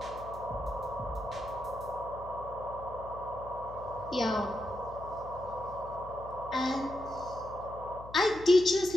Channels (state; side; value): noise; left; hum, 15 dB below the sound